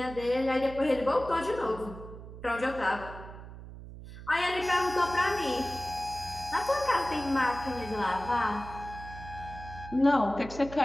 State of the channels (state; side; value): noise; right; hum, 13 dB below the sound